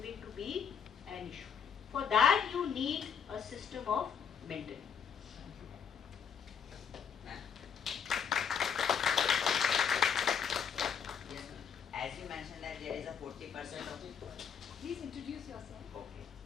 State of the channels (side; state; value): right; quieter; 7.3 dB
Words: to be an issue. For that you need a system of mentoring. As you mentioned that there is a 40% of... Please introduce yourself. Okay.